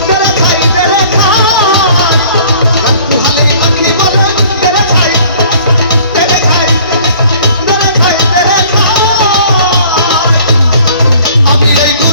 তেরে খাই তেরে খাই রাখু হালে পাখি বলে তেরে খাই তেরে খাই তেরে খাই তেরে খাই আমি এই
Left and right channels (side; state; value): both; inverted; correlation -0.53